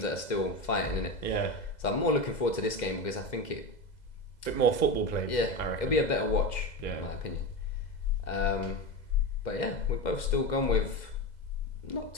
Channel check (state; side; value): late; right; 2.1 ms